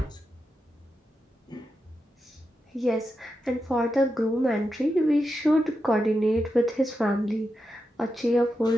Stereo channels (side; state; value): both; normal; correlation 0.88